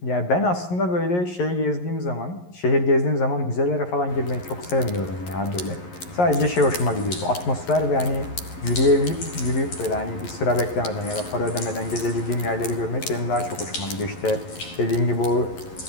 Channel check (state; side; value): late; right; 11 ms